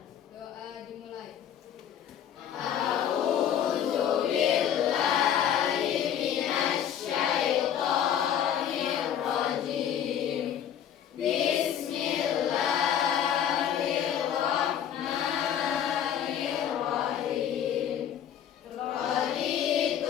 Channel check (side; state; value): right; quieter; 9.5 dB